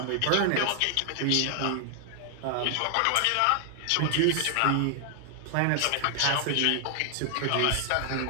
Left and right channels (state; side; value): different; both; correlation 0.00